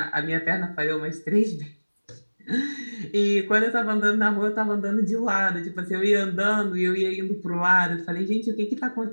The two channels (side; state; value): both; inverted; correlation -1.00